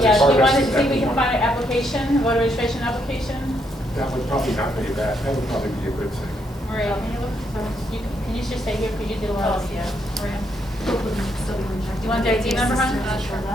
Yeah, do part you of want to it. see if we can find an application, voter registration application? That would probably not be bad, that would probably be a good thing. Maria, can you look, can you just stay here, because you did a lot of, yeah, Maria. You want the ID number, hon?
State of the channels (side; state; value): both; normal; correlation 0.75